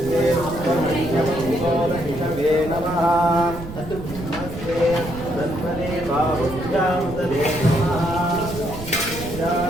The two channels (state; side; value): noise; right; rumble, 11 dB below the sound